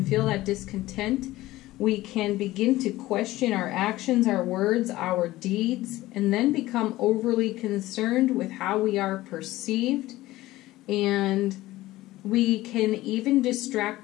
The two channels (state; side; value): quieter; right; 17.1 dB